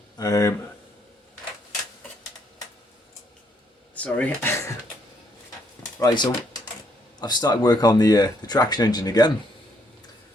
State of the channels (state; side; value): normal; both; correlation 0.71